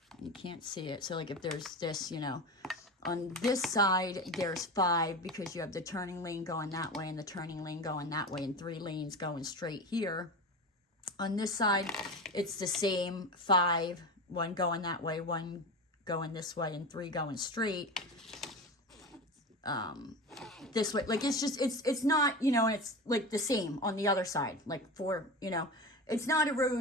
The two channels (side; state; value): both; normal; correlation 0.26